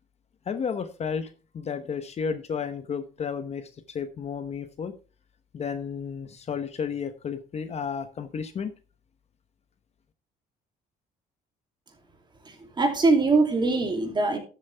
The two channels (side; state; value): both; normal; correlation 0.63